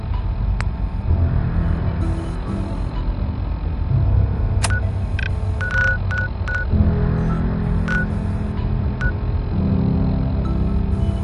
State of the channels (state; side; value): identical; both; correlation 1.00